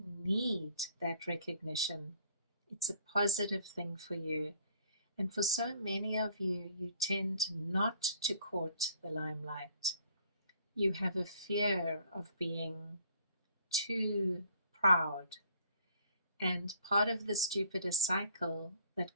need that recognition. It's a positive thing for you. And for so many of you, you tend not to court the limelight. You have a fear of being too proud. And part of this Jupiter cycle that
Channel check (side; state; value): both; inverted; correlation -0.59